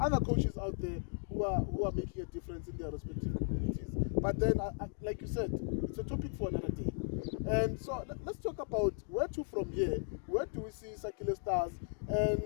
coaches out there who are making a difference in their respective communities. But then, like you said, it's a topic for another day. And so let's talk about where to from here. Where do we see Sakhile Stars?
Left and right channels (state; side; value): silent; right; 53 dB below the other